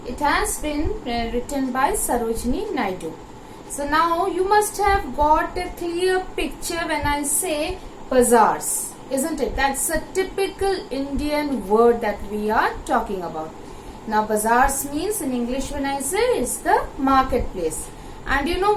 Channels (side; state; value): both; identical; correlation 1.00